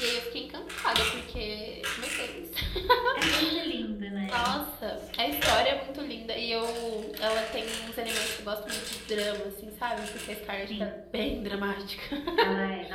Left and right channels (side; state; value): both; identical; correlation 1.00